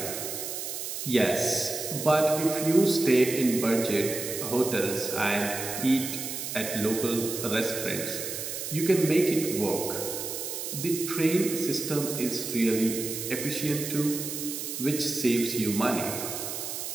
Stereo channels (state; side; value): noise; right; hiss, 5 dB below the sound